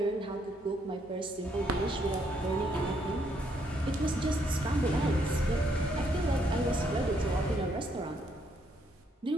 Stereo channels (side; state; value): both; normal; correlation 0.72